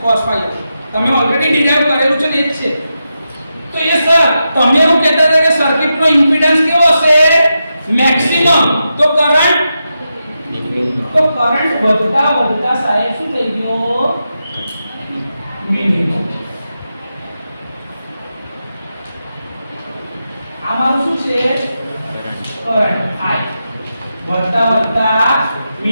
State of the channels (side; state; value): both; inverted; correlation -0.88